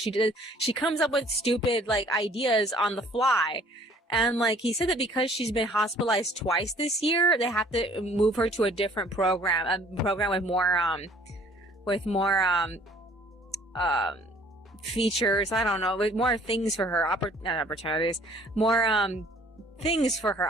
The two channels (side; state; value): both; normal; correlation 0.56